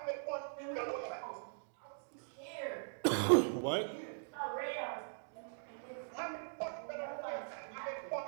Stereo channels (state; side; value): silent; left; digital silence